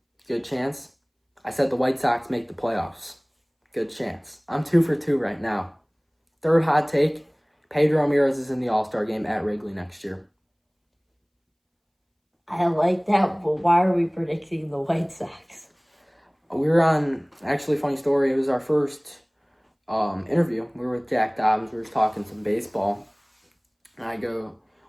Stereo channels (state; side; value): identical; both; correlation 1.00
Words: Good chance. I said the White Sox make the playoffs. Good chance. I'm 2 for 2 right now. 3rd hot take, Pedro Ramirez is in the All-Star game at Wrigley next year. I like that, but why are we predicting the White Sox? We were on, actually, funny story, it was our first interview. We were with Jack Dobbins. We were just talking some baseball. And